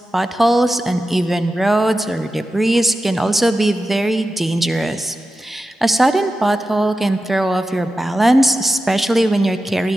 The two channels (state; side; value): normal; both; correlation 0.92